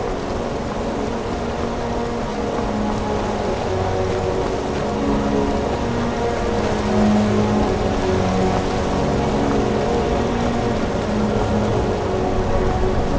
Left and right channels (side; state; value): both; identical; correlation 1.00